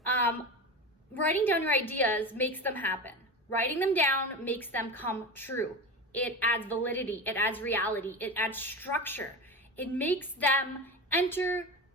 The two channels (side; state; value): both; normal; correlation 0.25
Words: Writing down your ideas makes them happen. Writing them down makes them come true. It adds validity, it adds reality, it adds structure. It makes them enter